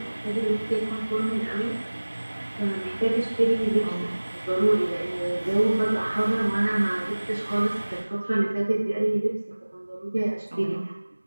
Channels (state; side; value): inverted; both; correlation -1.00